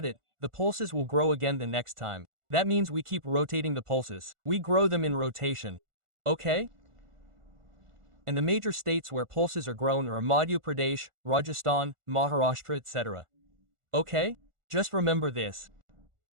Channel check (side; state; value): left; late; 1.4 ms